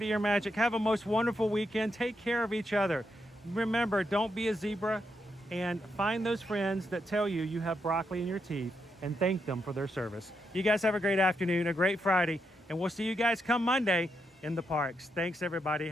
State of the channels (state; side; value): normal; both; correlation 0.82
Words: Ear Magic, have a most wonderful weekend. Take care of each other. Remember, don't be a zebra, and find those friends that tell you you have broccoli in your teeth and thank them for their service. You guys have a great afternoon, a great Friday, and we'll see you guys come Monday in the parks. Thanks, everybody.